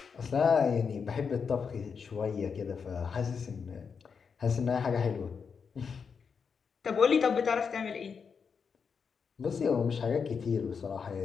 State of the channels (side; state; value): right; quieter; 6.0 dB